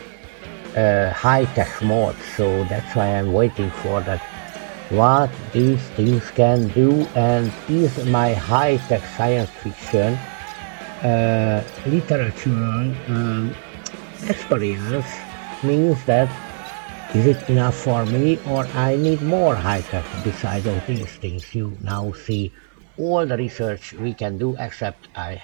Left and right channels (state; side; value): silent; left; digital silence